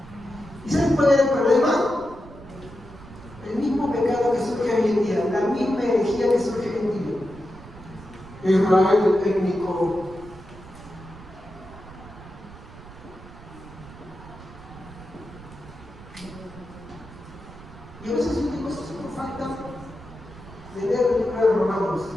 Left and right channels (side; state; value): right; noise; rumble, 17 dB below the sound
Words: ¿Y saben cuál era el problema? El mismo pecado que surge hoy en día, la misma herejía que surge hoy en día. Israel étnico. Y a veces yo digo, esto es por falta de leer el libro de Romanos.